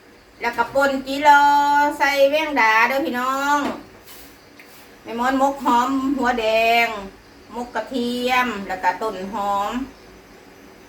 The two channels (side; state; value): both; identical; correlation 1.00